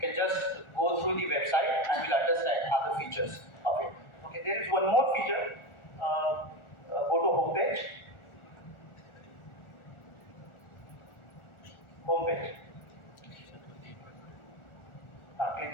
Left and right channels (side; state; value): right; late; 1.4 ms